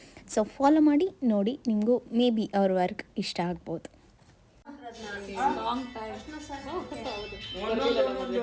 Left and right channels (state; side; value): identical; both; correlation 1.00